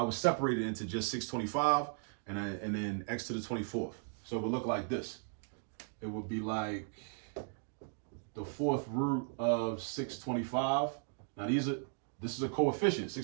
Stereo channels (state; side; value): silent; left; 53 dB below the other